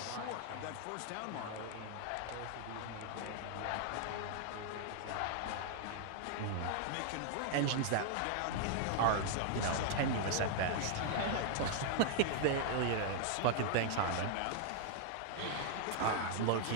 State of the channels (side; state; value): both; different; correlation -0.01